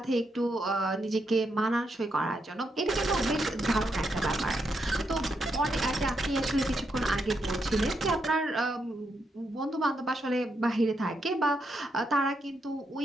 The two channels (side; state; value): both; normal; correlation 0.81